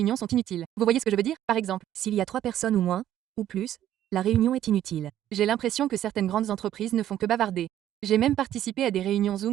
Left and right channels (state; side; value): quieter; left; 11.9 dB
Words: sont inutiles. Vous voyez ce que je veux dire? Par exemple, S'il y a 3 personnes ou moins, ou plus, la réunion est inutile. j'ai l'impression que certaines grandes entreprises ne font que bavarder. J'ai même participé à des réunions